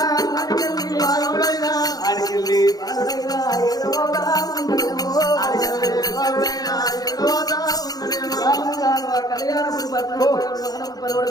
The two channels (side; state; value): right; late; 0.19 ms